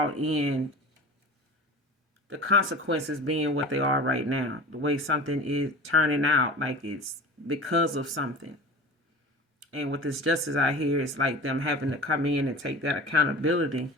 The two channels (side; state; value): both; normal; correlation 0.36